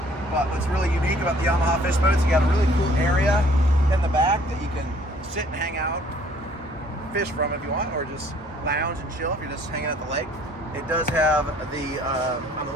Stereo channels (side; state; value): both; normal; correlation 0.58